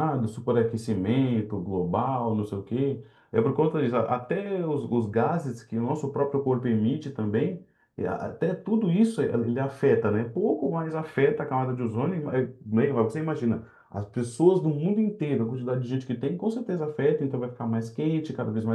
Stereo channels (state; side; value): identical; both; correlation 1.00